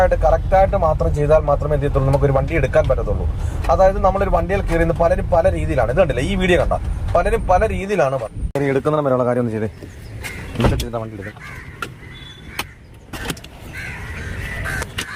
കറക്റ്റായിട്ട് മാത്രം ചെയ്താൽ മാത്രമേ എന്ത് ചെയ്യത്തുള്ളൂ, നമുക്കൊരു വണ്ടി എടുക്കാൻ പറ്റത്തുള്ളൂ. അതായത് നമ്മളൊരു വണ്ടിയിൽ കയറി പലരും പല രീതിയിലാണ്, ഇത് കണ്ടില്ല ഈ വീഡിയോ കണ്ട, പലരും പല രീതിയിലാണ് എടുക്കുന്നിടം വരെയുള്ള കാര്യം ഒന്ന് ചെയ്തേ. വണ്ടി എടുക്കാം,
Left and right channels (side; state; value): both; identical; correlation 1.00